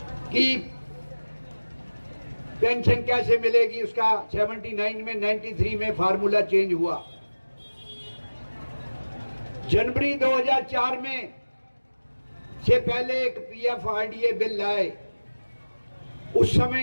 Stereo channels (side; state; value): both; inverted; correlation -1.00